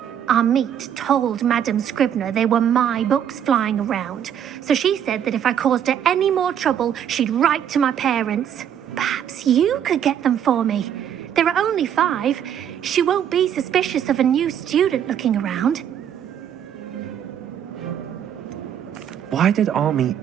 Amit told Madame Scribner they were my books flying around, so she said that if I caused her any more trouble, she'd write to my parents. Perhaps you could get them for me. There are only 5. She won't be suspicious of a new student looking around. Why did Army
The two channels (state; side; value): quieter; left; 9.3 dB